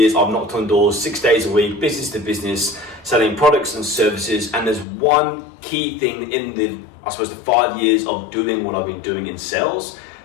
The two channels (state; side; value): drops out; right; at 4.9 s